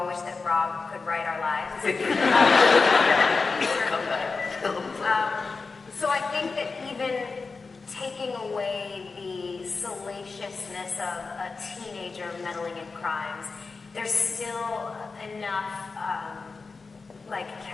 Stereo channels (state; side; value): quieter; right; 4.3 dB